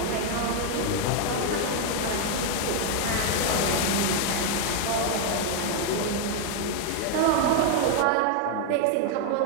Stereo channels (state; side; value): different; both; correlation 0.00